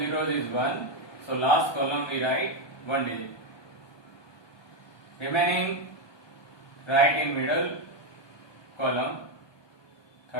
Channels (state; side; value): late; right; 1.2 ms